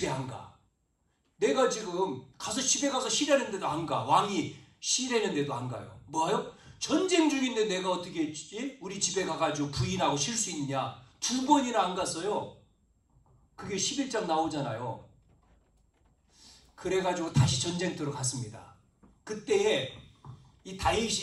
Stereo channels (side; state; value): both; identical; correlation 1.00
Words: 안 가. 내가 지금 가서 집에 가서 쉬려는데도 안 가. 왕이 쉬려는데도 안 가요. 뭐요? 전쟁 중인데 내가 어떻게 우리 집에 가가지고 부인하고 쉴 수 있냐. 2번이나 안 갔어요. 그게 11장 나오잖아요. 그래가지고 다시 전쟁터로 갔습니다. 그때에 이